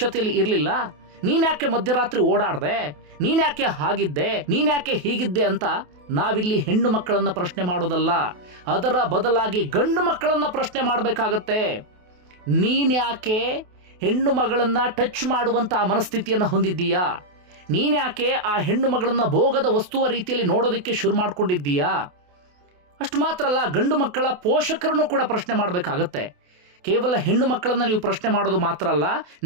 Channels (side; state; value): left; late; 28 ms